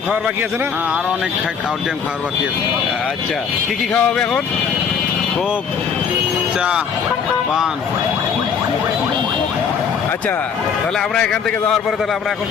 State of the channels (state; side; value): quieter; right; 6.7 dB